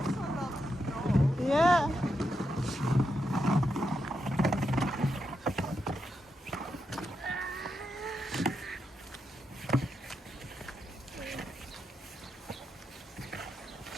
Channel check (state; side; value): normal; both; correlation 0.85